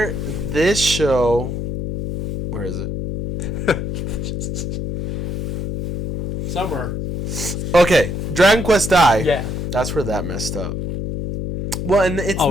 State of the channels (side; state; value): left; noise; hum, 3 dB below the sound